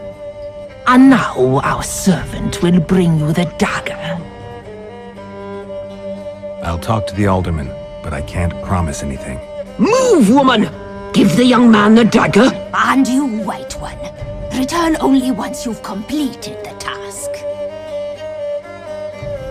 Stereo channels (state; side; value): identical; both; correlation 1.00